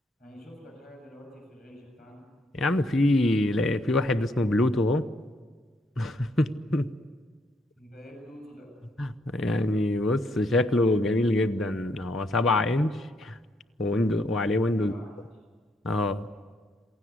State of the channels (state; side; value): normal; both; correlation 0.73